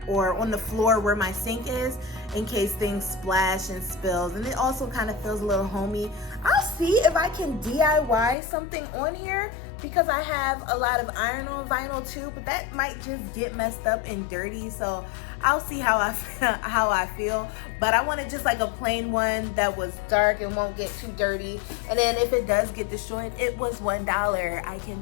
or on the floor where my sink is in case things splash and spills, and it also kind of feels a little homey. I'll see if I can DIY something on here because I have a lot of iron-on vinyl too, but that might just get messed up and dirty, so I'll see how I feel. But I wanted just like a plain one that was dark and won't get too dirty, and then if it does get destroyed, it was $1. I can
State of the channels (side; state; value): right; drops out; at 8.3 s